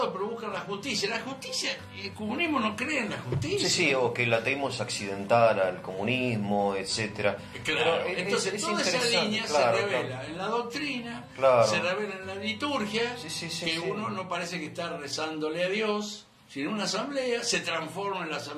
pero buscan la justicia. La justicia, el comunismo no cree en la justicia. Sí, o que el ateísmo es accidental al comunismo, etcétera. Claro, entonces toda esa línea se revela en la doctrina, se revela en la liturgia, que uno no parece que está rezándole a Dios, sino una asamblea, se transforma en la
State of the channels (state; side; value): identical; both; correlation 1.00